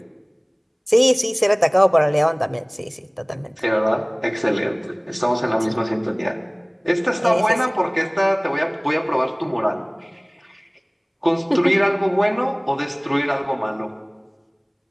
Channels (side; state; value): both; identical; correlation 1.00